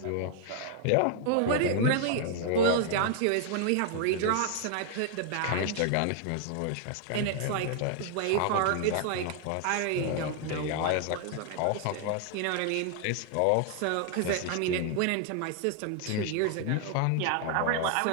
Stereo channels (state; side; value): different; both; correlation 0.00